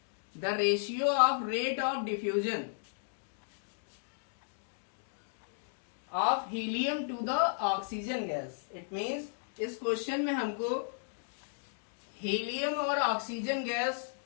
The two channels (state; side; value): silent; right; digital silence